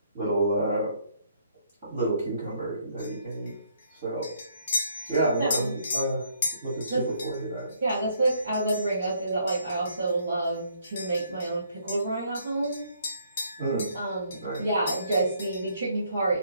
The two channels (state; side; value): inverted; both; correlation -0.67